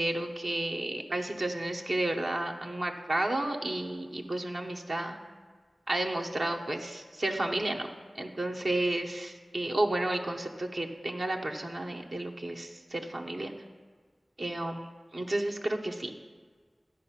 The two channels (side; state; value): both; normal; correlation 0.96